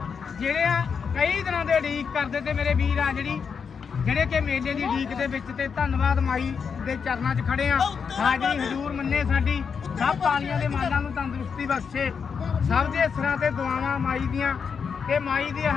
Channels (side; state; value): right; quieter; 6.2 dB